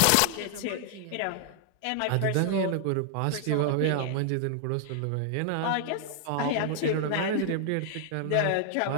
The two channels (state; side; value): different; both; correlation 0.00